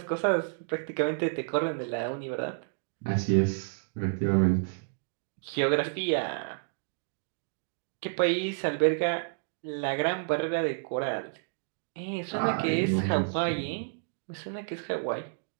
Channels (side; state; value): left; silent; digital silence